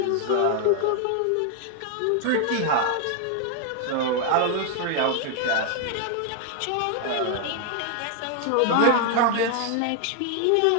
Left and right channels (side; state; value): both; different; correlation 0.00